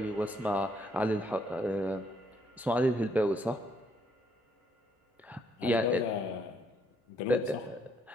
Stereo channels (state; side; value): normal; both; correlation 0.71